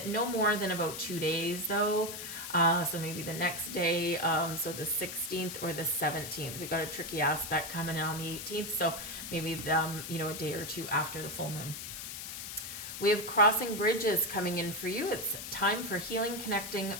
no more than about 2 days though. So maybe the next day, so the 16th or the 17th. We've got a tricky aspect coming in on the 18th, so maybe a day or two after the full moon. We have crossing bridges coming in for you. It's time for healing, connecting,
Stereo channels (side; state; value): left; noise; hiss, 8 dB below the sound